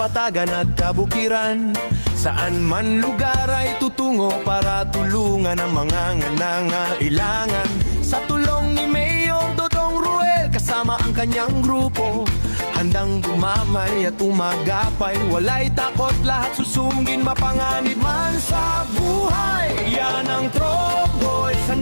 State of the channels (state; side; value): inverted; both; correlation -1.00